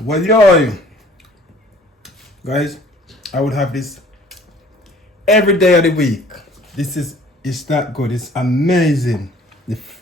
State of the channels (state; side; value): normal; both; correlation 0.53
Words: yo, guys, I would have this every day of the week. It's that good. It's amazing.